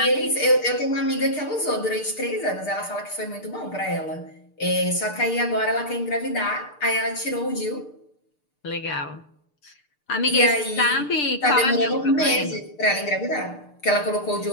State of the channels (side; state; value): right; late; 6.7 ms